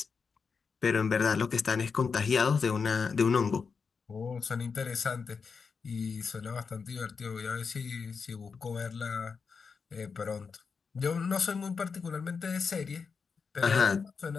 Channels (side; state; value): right; quieter; 5.4 dB